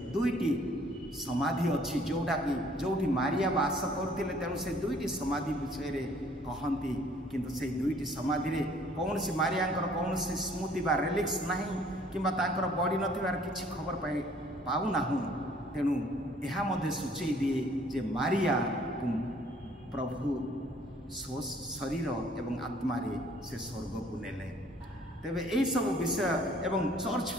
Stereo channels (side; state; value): both; normal; correlation 0.59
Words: दुईटी समाधि अच्छी जोटा कि जोठी मारिया बास करते तेणु से दुईटी समाधि विषय रे कहती किंतु से दुईटी समाधि रे कौन सी मारिया कौन सी स्मृति बा रेलिक्स नहीं किंबा तांकर बड़ी नथिबार किछि खबर पाऊ नाहु तेणु यह मध्य सूचई दिए जे मारिया प्रभु शरीर एवं आत्मा रे से स्वर्ग को नेले। तेबे एई सब विषय एवं चर्च